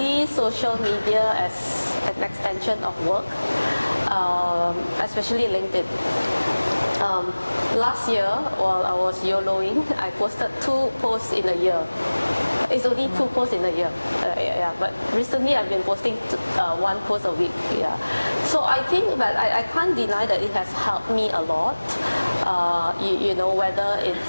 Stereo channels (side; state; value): both; inverted; correlation -1.00